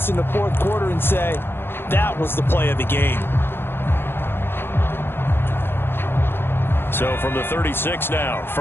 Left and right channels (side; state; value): right; late; 0.11 ms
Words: in the 4th quarter and say, that was the play of the game. So from the 36 now,